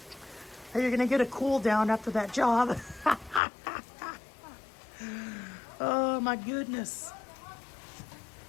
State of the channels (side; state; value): right; drops out; at 3.4 s